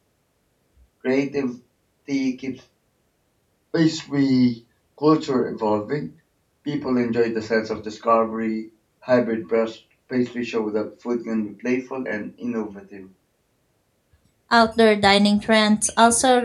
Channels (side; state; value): both; identical; correlation 1.00